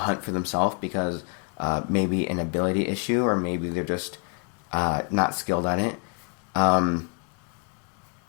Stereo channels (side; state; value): right; quieter; 36.1 dB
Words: for themselves because maybe an ability issue, or maybe they're just not skilled at it. Now